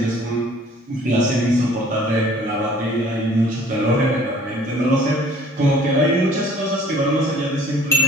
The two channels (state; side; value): normal; both; correlation 0.54